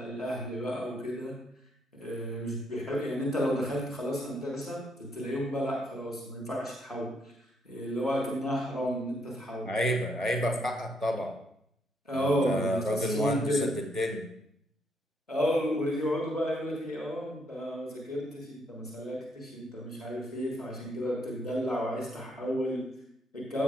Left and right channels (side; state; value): both; normal; correlation 0.73